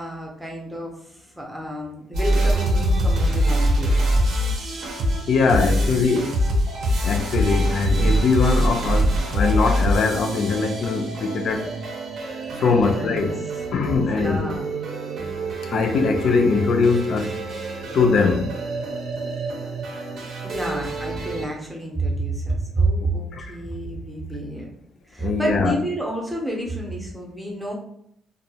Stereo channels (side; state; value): both; normal; correlation 0.76